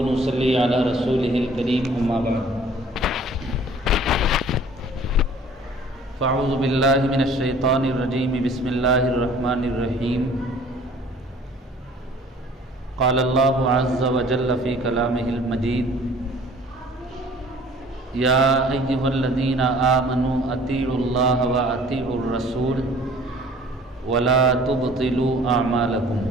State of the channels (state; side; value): normal; both; correlation 0.51